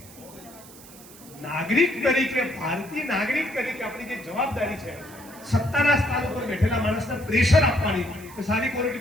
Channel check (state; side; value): noise; right; hiss, 20 dB below the sound